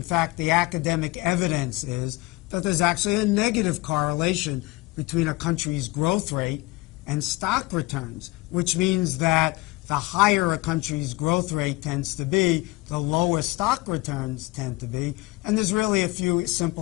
fact, the academic evidence is that there's actually a negative correlation between a country's growth rate and stock returns, which means that the higher a country's growth rate tends to be, the lower stock returns tend to be. And there's really a few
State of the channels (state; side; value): quieter; right; 22.0 dB